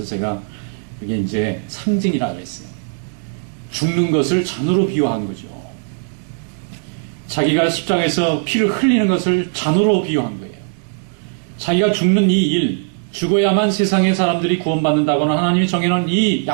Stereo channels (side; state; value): left; silent; 67 dB below the other